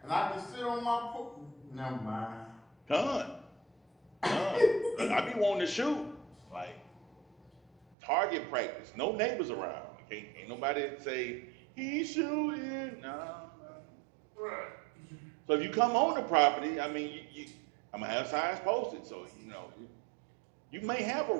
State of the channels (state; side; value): drops out; left; at 8.0 s